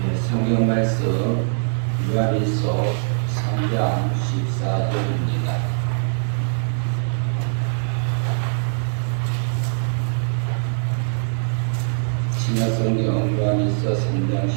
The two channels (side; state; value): left; silent; 64 dB below the other